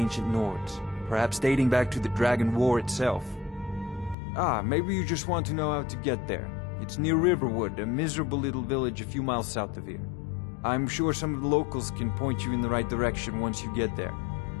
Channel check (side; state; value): right; drops out; at 4.2 s